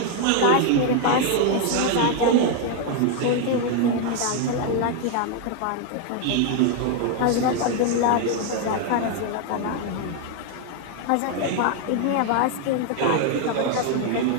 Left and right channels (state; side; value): different; both; correlation 0.01